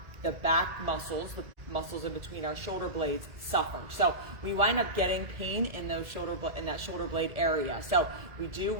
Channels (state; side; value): late; left; 1.9 ms